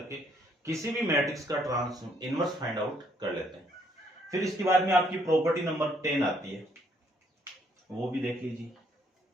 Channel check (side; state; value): both; normal; correlation 0.68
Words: किसी भी मैट्रिक्स का इनवर्स फाइंड आउट कर लेते हैं। फिर इसके बाद में आपकी प्रॉपर्टी नंबर 10 आती है, वो भी देख लीजिए।